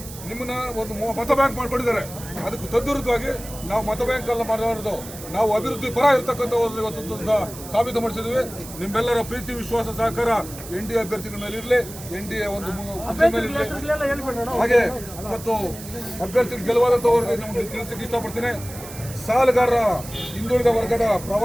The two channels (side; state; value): right; noise; hiss, 14 dB below the sound